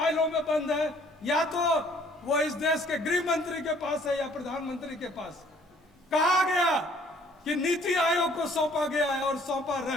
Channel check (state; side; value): normal; both; correlation 0.60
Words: में बंद है, या तो वो इस देश के गृह मंत्री के पास है या प्रधानमंत्री के पास। कहा गया कि नीति आयोग को सौंपा गया है और सौंपा